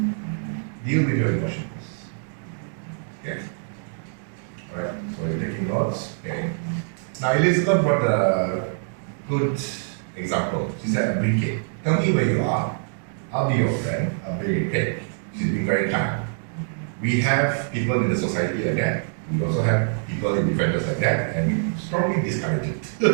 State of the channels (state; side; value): silent; left; digital silence